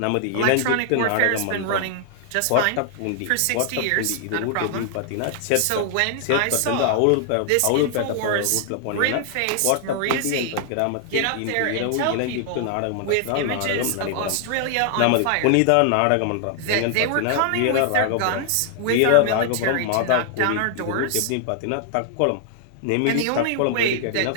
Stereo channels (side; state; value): both; different; correlation 0.00